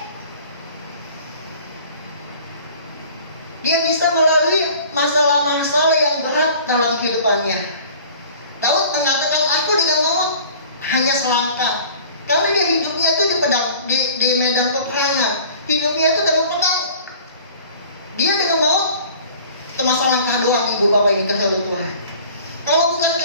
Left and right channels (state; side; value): inverted; both; correlation -0.47